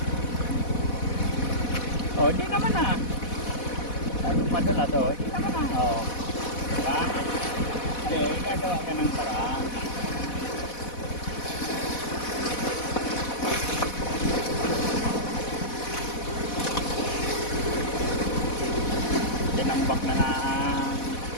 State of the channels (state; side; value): late; right; 4.1 ms